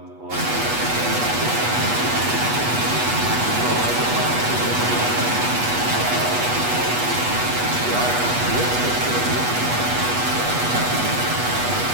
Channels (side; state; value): left; late; 8.2 ms